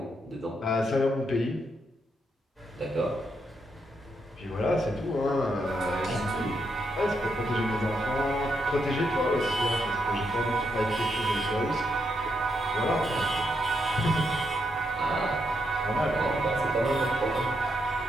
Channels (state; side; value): normal; both; correlation 0.79